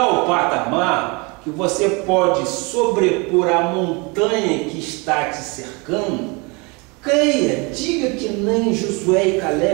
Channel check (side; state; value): left; quieter; 28.9 dB